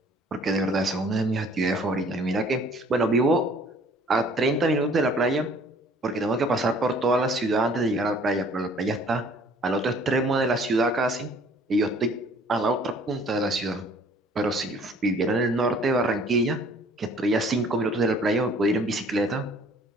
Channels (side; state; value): both; normal; correlation 0.55